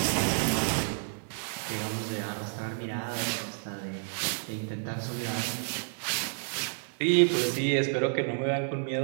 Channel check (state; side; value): silent; left; 58 dB below the other